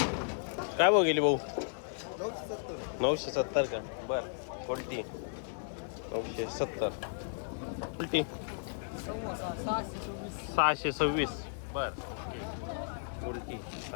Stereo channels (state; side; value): silent; right; 55 dB below the other